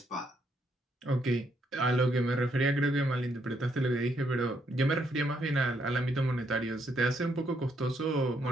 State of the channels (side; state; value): both; normal; correlation 0.74